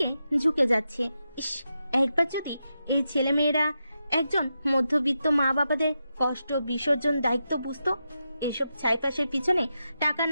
ঝুঁকে যাচ্ছে। ইস, একবার যদি এই ছেলে মেয়েরা একজন মধ্যবিত্ত মা বাবাদের কষ্ট বিসর্জন দায়িত্ব বুঝতো। এসব ছাইপাশের পিছনে টাকা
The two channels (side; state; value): both; inverted; correlation -0.87